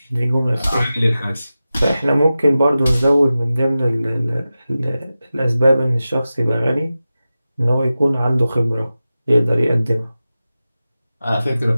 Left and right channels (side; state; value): both; inverted; correlation -0.94